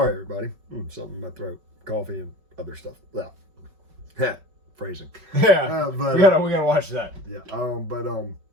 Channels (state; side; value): late; left; 5.3 ms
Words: everybody, something in my throat, coffee and other stuff. Well, phrasing. Yeah, but we gotta watch that. Yeah,